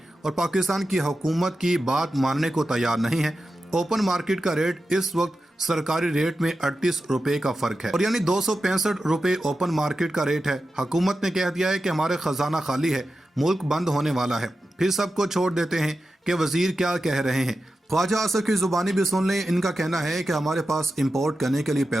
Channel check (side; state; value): both; normal; correlation 0.92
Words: और पाकिस्तान की हुकूमत की बात मानने को तैयार नहीं है। ओपन मार्केट का रेट इस वक्त सरकारी रेट में 38 रुपए का फर्क है और यानी 265 रुपए ओपन मार्केट का रेट है। हुकूमत ने कह दिया है कि हमारे खजाना खाली है, मुल्क बंद होने वाला है। फिर सबको छोड़ देते हैं कि वजीर क्या कह रहे हैं। ख्वाजा आसिफ की जुबानी भी सुन लें। इनका कहना है कि हमारे पास इंपोर्ट करने के लिए